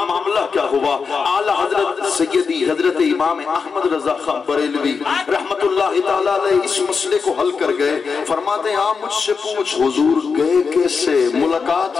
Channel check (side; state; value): right; quieter; 5.3 dB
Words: معاملہ کیا ہوا؟ اعلی حضرت سیدی حضرت امام احمد رضا خان بریلوی رحمت اللہ تعالیٰ علیہ اس مسئلے کو حل کر گئے. فرماتے ہیں آپ مجھ سے پوچھ حضور گئے کیسے,